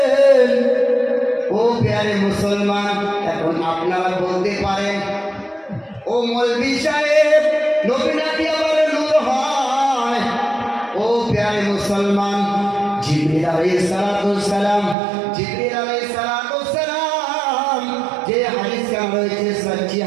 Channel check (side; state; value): left; drops out; at 15.0 s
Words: ও প্যারে মুসলমান, এখন আপনারা বলতে পারেন, ও মৌলভী সাহেব, নবী নাকি আবার নূর হয়? ও প্যারে মুসলমান, জিবরিল আলাইহিস সালাম যে হাদিস রয়েছে সহিহ